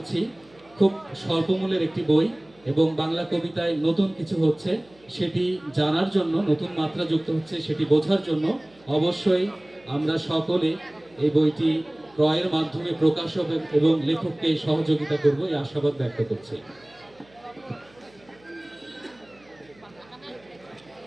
খুব স্বল্পমূল্যের একটি বই এবং বাংলা কবিতায় নতুন কিছু হচ্ছে সেটি জানার জন্য, নতুন মাত্রা যুক্ত হচ্ছে সেটি বোঝার জন্য অবশ্যই আমরা সকলে এই বইটি ক্রয়ের মাধ্যমে প্রকাশক এবং লেখককে সহযোগিতা করব এই আশাবাদ ব্যক্ত করছি।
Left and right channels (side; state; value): right; noise; hum, 29 dB below the sound